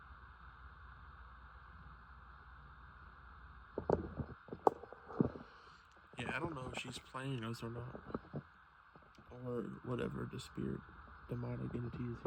Yeah, I don't know if she's playing us or not. Or whatever the spirit, demonic entity is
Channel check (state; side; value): identical; both; correlation 1.00